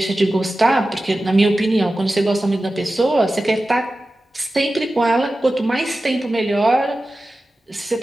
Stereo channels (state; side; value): normal; both; correlation 0.94